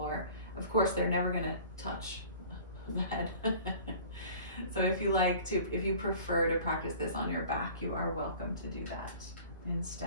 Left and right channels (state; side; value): inverted; both; correlation -0.45